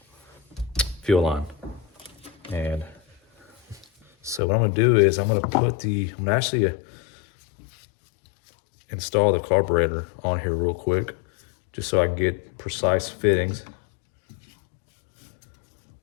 fuel line. And so what I'm gonna do is I'm gonna actually install the carburetor on here real quick, just so I can get precise fittings.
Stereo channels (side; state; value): right; drops out; at 4.4 s